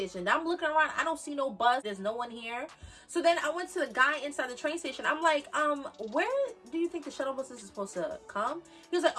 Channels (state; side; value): identical; both; correlation 1.00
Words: Now I'm looking around, I don't see no bus, there's no one here. So then I went to the guy inside the train station. I'm like, where do you think the shuttle bus is supposed to come? He was like,